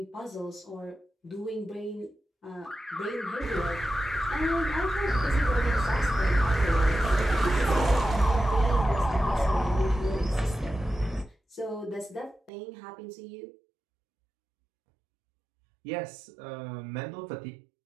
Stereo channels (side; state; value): left; drops out; at 12.5 s